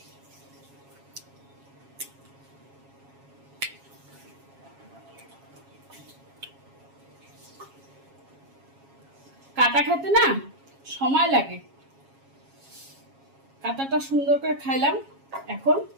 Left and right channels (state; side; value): late; left; 7.3 ms